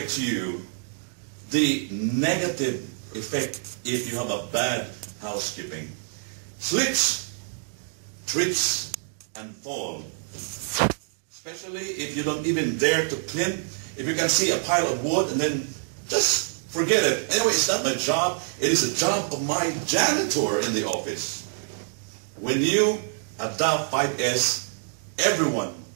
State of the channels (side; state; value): left; silent; digital silence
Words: to you the negative effect if you have a bad housekeeping. Slips, trips, and fall. Especially if you don't even dare to clean. If you can see a pile of wood and then just forget it. Anyway, it's not my job. It is the job of my janitor in the office. When you adopt 5S, everyone